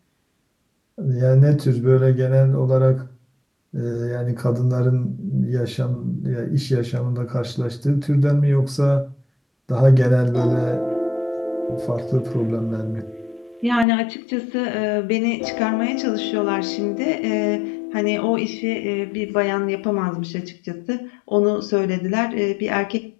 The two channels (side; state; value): right; drops out; at 13.9 s